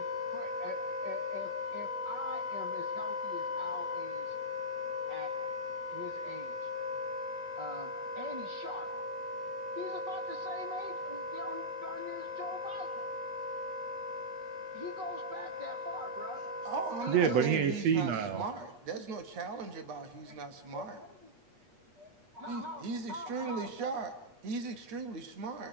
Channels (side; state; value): left; late; 8.3 ms